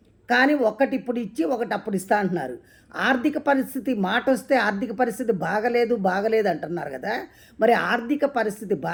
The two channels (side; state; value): both; identical; correlation 1.00